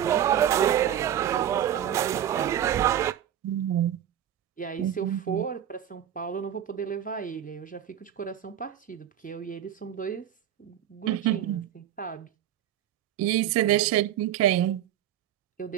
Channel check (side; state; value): left; quieter; 10.7 dB